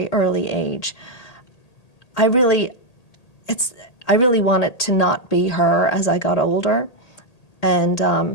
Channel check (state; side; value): late; right; 1.8 ms